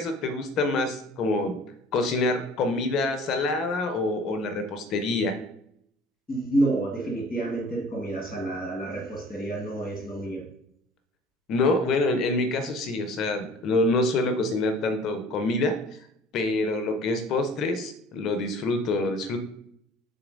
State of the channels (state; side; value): normal; both; correlation 0.49